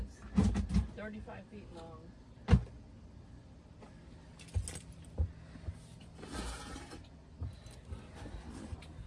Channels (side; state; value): both; identical; correlation 1.00